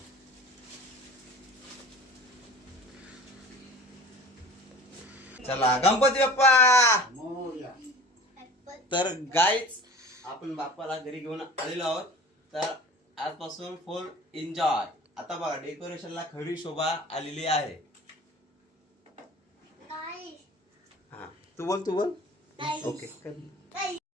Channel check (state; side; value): normal; both; correlation 0.41